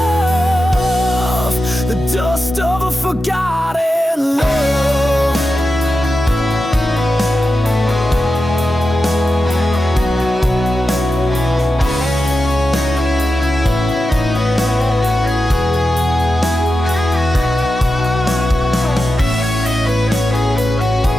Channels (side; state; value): both; normal; correlation 0.91